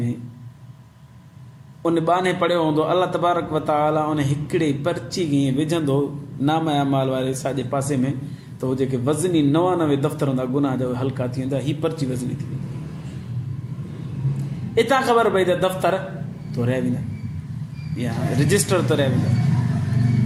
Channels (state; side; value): identical; both; correlation 1.00